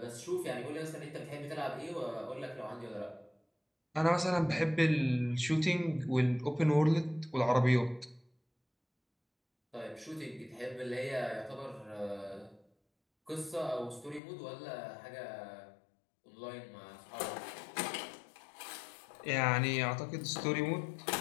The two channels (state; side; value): drops out; right; at 14.2 s